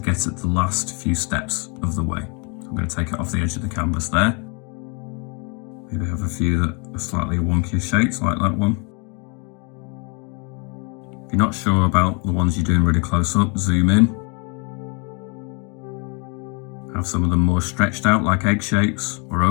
get at the last few steps of the way. I'm going to take it off the edge of the canvas there. Maybe have a few that are slightly wonkier shapes like that one. If you're not sure about the ones you're doing really close up, zoom in. Have some of them more stretched out like egg shapes or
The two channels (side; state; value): right; quieter; 34.1 dB